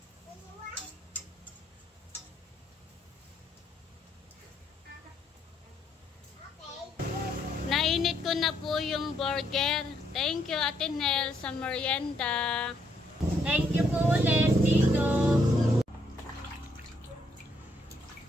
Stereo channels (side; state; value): both; normal; correlation 0.73